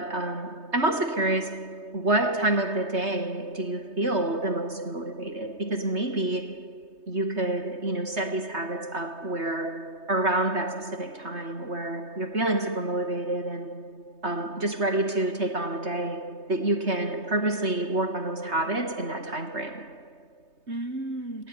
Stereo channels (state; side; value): late; left; 3.2 ms